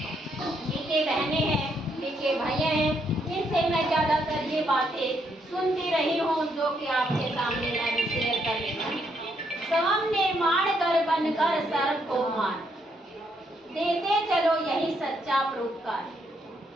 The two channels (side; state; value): both; normal; correlation 0.75